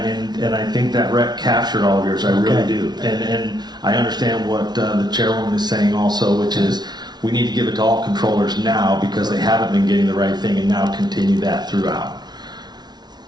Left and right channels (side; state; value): left; late; 0.20 ms